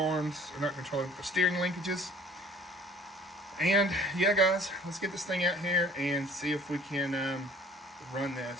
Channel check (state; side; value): normal; both; correlation 0.52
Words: or not control arms, the steering linkages. And yeah, guys, let's get this thing out here and see if we can run